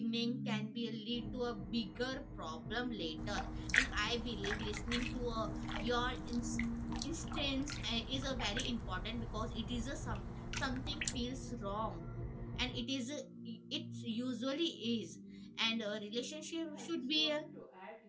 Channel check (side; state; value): both; identical; correlation 1.00